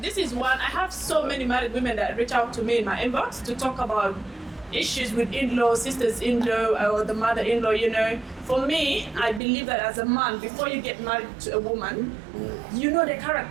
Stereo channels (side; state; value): left; drops out; at 9.4 s